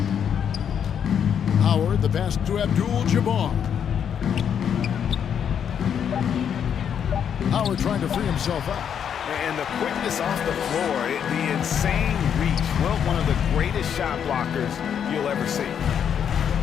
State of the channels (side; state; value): right; quieter; 8.2 dB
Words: Howard, the pass to Abdul-Jabbar. Howard trying to free himself up. And the quickness off the floor, the insane reach. Well, one of the greatest shot blockers you'll ever see.